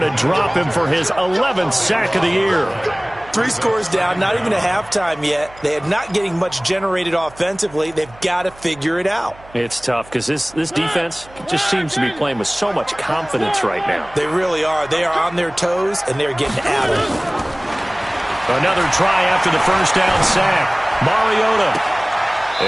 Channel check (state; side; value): noise; right; hum, 23 dB below the sound